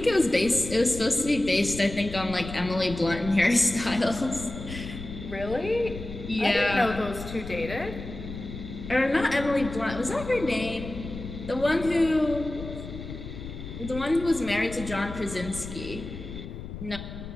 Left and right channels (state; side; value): noise; left; rumble, 10 dB below the sound